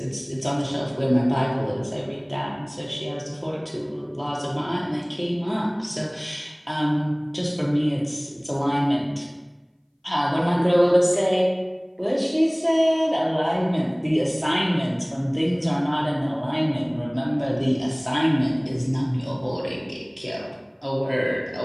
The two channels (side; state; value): both; identical; correlation 1.00